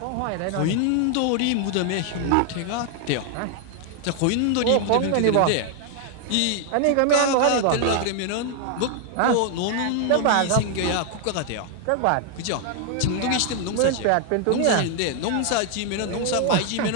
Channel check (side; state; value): both; different; correlation 0.00